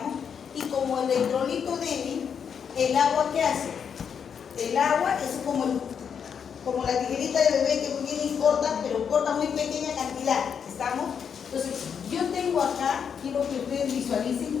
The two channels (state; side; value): quieter; right; 7.2 dB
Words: Y como electrolito débil, ¿el agua qué hace? El agua es como la tijerita de bebé que viene y corta, pero corta muy pequeña cantidad. ¿Estamos? Entonces, yo tengo acá, quiero que ustedes